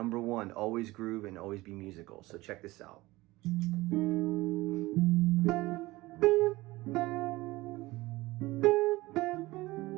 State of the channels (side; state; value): left; quieter; 19.7 dB